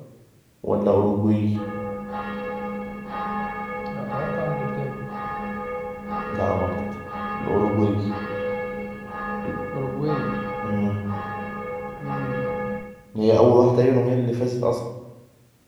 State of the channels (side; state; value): both; identical; correlation 1.00